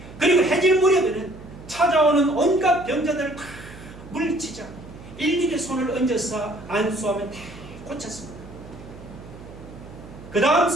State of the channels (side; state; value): right; noise; hum, 17 dB below the sound